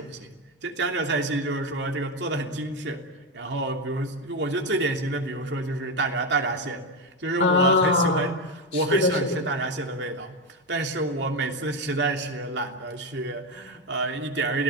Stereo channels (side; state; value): both; normal; correlation 0.11